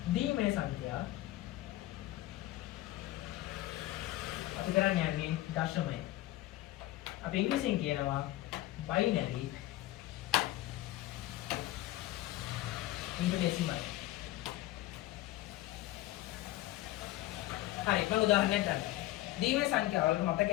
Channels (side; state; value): right; quieter; 16.3 dB